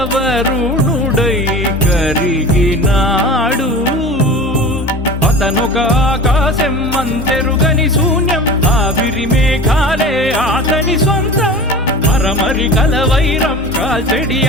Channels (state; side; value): normal; both; correlation 0.36